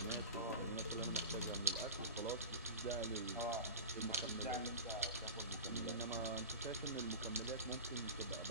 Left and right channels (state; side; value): inverted; both; correlation -0.30